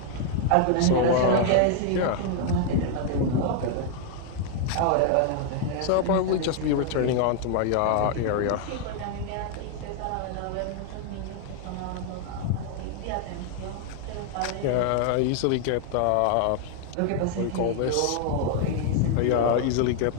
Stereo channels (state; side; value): different; both; correlation 0.00